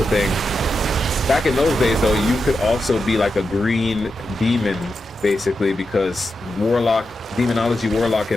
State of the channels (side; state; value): both; normal; correlation 0.88